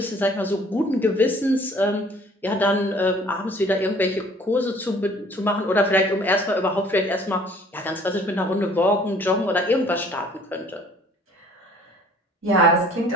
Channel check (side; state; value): both; normal; correlation 0.54